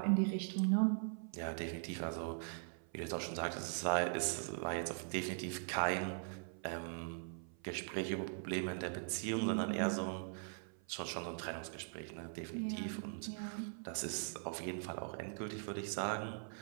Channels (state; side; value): silent; left; 50 dB below the other